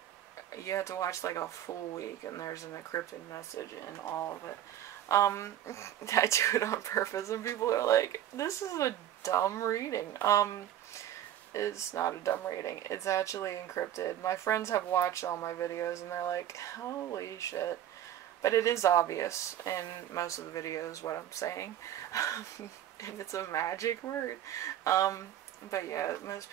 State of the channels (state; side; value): quieter; left; 11.5 dB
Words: you have to watch like a full week and there's an encrypted message in all of it. I do it on purpose and people are like, this is a dumb reading. It's not a dumb reading. It's actually encrypted. My friends have watched all my videos and they're like, holy shit. But it is obvious in most of the videos what I'm saying. And it's a magic word. But yeah, most